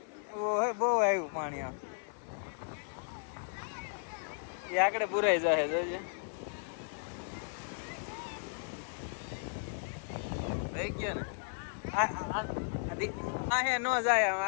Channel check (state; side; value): silent; right; digital silence